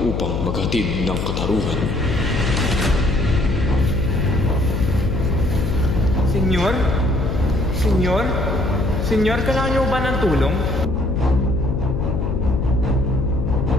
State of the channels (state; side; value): noise; left; hum, 2 dB below the sound